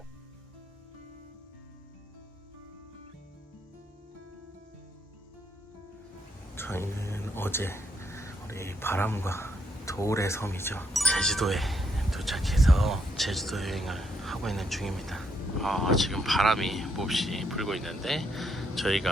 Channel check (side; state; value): both; normal; correlation 0.75